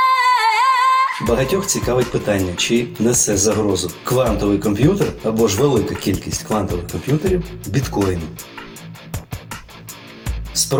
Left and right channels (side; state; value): both; identical; correlation 1.00